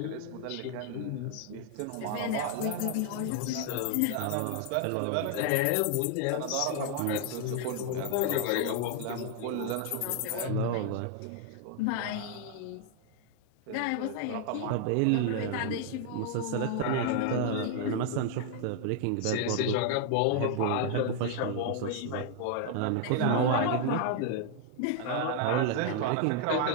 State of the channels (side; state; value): both; different; correlation 0.00